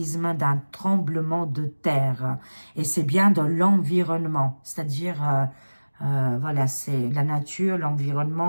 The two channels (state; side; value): inverted; both; correlation -1.00